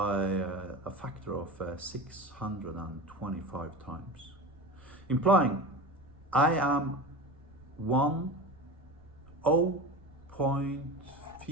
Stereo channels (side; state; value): right; noise; rumble, 25 dB below the sound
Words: a factor of 625 times. Implying I am